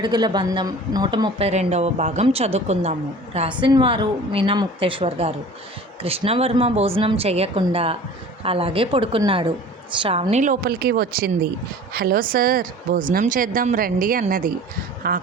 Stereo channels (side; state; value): both; normal; correlation 0.43